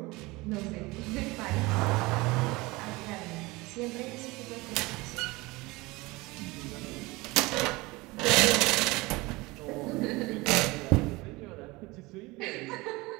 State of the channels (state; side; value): quieter; left; 22.5 dB